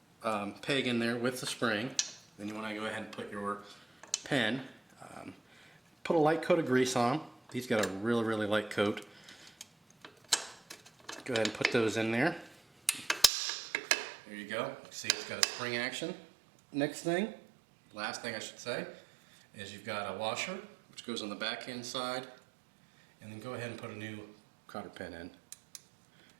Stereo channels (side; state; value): left; drops out; at 13.3 s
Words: peg in there with the spring. Then you want to go ahead and put your pen. Put a light coat of grease on. These got a really light coat. Go ahead and put those in there. There you go. You see it's got a spring action. Next thing, last thing I should say, is you've got a washer which goes on the back end side, and then go ahead and put a new cotter pin in